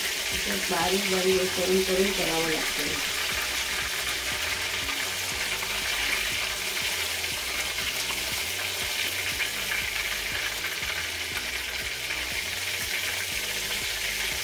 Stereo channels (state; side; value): identical; both; correlation 1.00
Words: बारीक बारीक करून करून करावं लागतं.